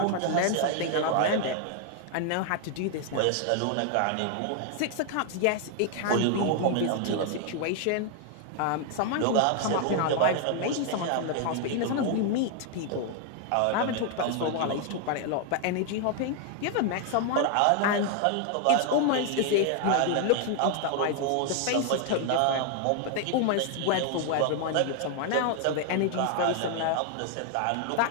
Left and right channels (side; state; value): both; different; correlation 0.00